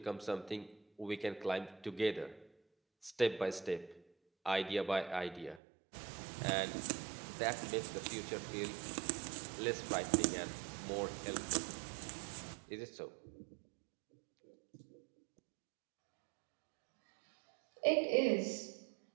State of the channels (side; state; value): left; drops out; at 5.6 s